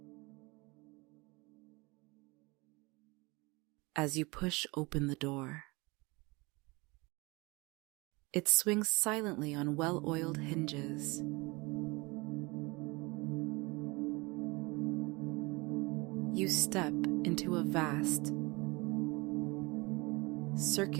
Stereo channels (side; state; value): left; quieter; 25.3 dB